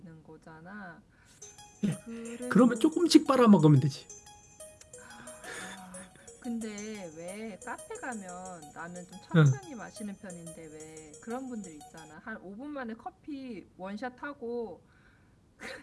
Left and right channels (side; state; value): both; identical; correlation 1.00